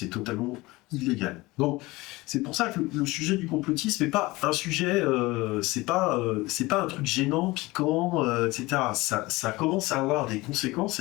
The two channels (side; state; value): right; quieter; 21.2 dB